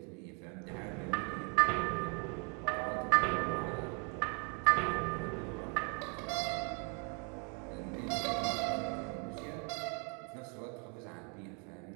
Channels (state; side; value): quieter; left; 36.7 dB